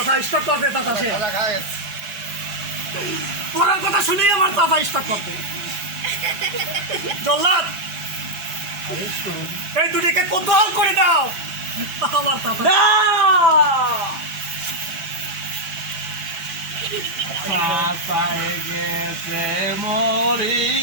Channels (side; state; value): left; late; 6.0 ms